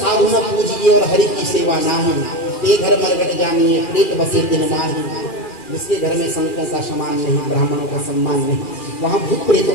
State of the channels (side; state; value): right; late; 2.4 ms